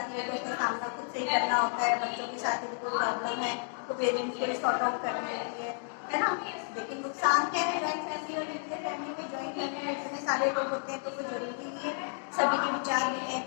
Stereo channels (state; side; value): silent; right; 57 dB below the other